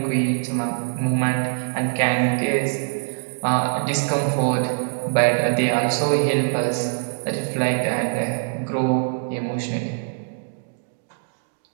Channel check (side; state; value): left; silent; digital silence